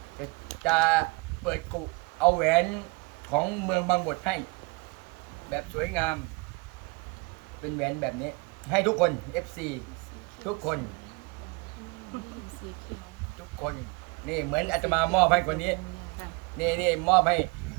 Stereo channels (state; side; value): quieter; left; 28.3 dB